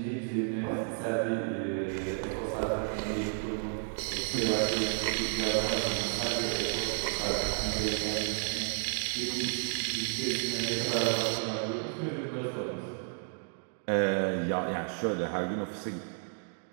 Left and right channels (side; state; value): left; silent; 56 dB below the other